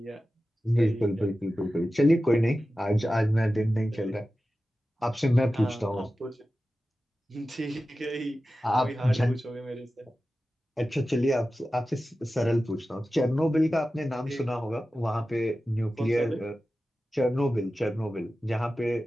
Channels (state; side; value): normal; both; correlation 0.94